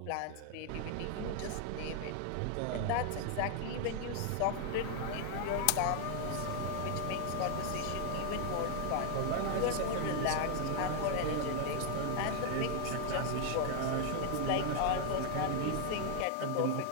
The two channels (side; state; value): both; different; correlation 0.00